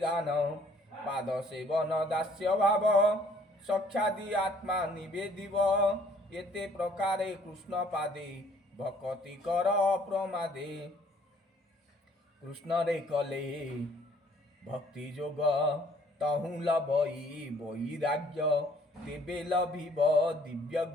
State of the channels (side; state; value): both; normal; correlation 0.60